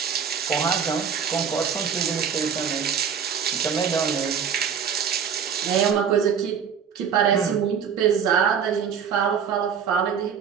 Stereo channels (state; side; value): quieter; left; 7.2 dB